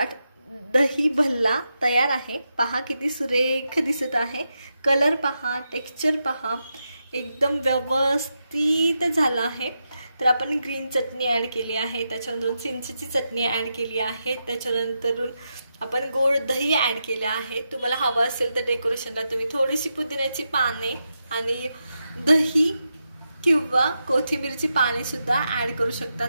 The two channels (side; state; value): both; inverted; correlation -0.86